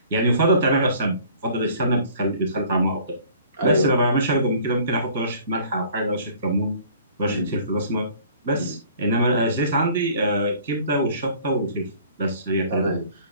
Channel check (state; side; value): inverted; both; correlation -0.52